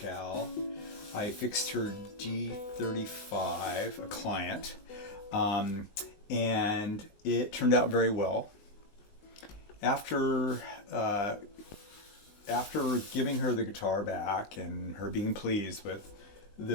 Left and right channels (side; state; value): right; late; 20 ms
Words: I fixed her D35, a client, um, and it turned out very well. After uh, after giving her the guitar back and her being pleased with